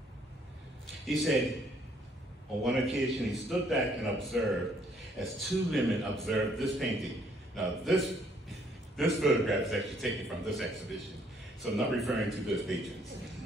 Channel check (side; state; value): both; normal; correlation 0.65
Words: He said, on one occasion, he stood back and observed as 2 women observed this painting. Now, this photograph is actually taken from this exhibition, so I'm not referring to those patrons.